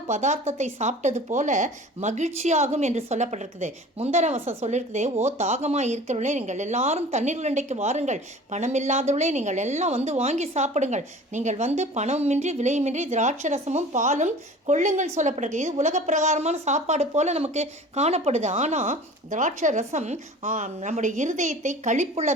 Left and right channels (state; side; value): normal; both; correlation 0.42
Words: பதார்த்தத்தை சாப்பிட்டது போல மகிழ்ச்சியாகும் என்று சொல்லப்பட்டிருக்குது. முந்தர வசம் சொல்லியிருக்குது, ஓ தாகமாக இருக்கிறவர்களே நீங்கள் எல்லாரும் தண்ணீர் உருண்டைக்கு வாருங்கள், பணம் இல்லாதவர்களே நீங்கள் எல்லாம் வந்து வாங்கி சாப்பிடுங்கள், நீங்கள் வந்து பணமின்றி விலையுமின்றி திராட்சை ரசமும் பாலும் கொள்ளுங்கள் சொல்லப்பட்டிருக்கு. இது உலக பிரகாரமான சாப்பாடு போல நமக்கு காணப்படுது. ஆனால் திராட்சை ரசம் நம்முடைய இருதயத்தை